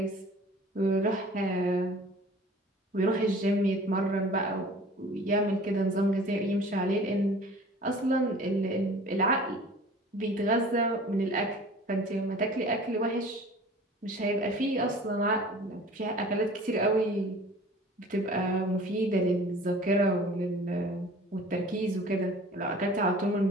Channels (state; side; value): normal; both; correlation 0.45